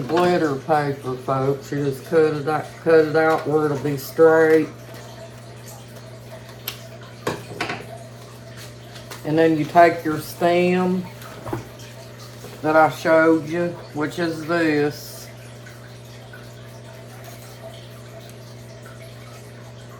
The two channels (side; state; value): both; identical; correlation 1.00